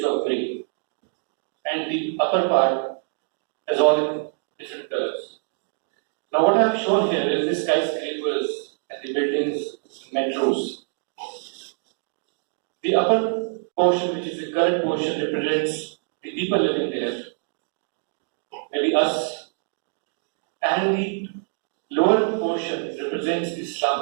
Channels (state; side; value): silent; left; 58 dB below the other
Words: of grey. And the upper part is all in different colors. Now what I have shown here is the skyscrapers and the buildings, metros. The upper portion, which is the current portion, represents the people living there, maybe us, and the lower portion represents the